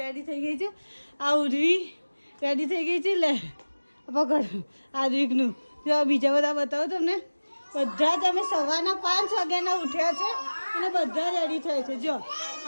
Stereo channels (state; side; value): inverted; both; correlation -1.00